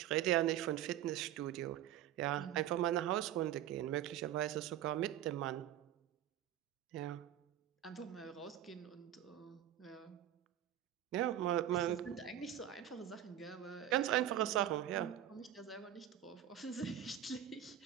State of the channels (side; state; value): left; quieter; 11.4 dB